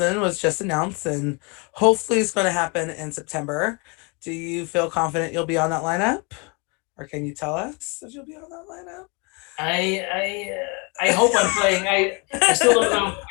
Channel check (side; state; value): right; quieter; 31.5 dB